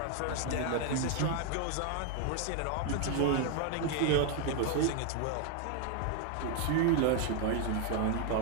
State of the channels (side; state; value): both; different; correlation 0.01